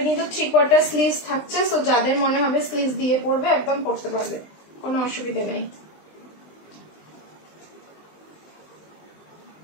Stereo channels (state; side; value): late; right; 20 ms